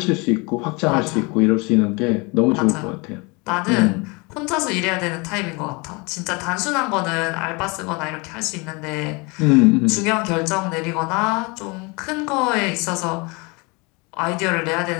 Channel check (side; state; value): right; quieter; 28.2 dB